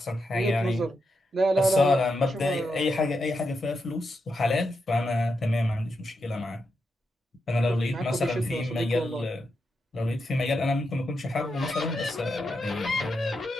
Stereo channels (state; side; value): normal; both; correlation 0.85